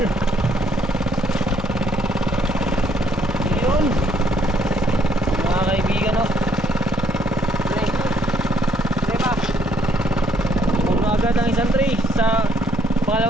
Yun mga kaibigan oh. Puno agad ang isang tray sa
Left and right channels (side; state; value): both; normal; correlation 0.67